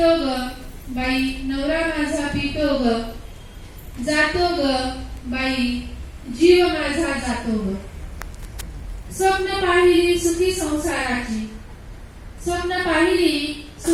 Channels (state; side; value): identical; both; correlation 1.00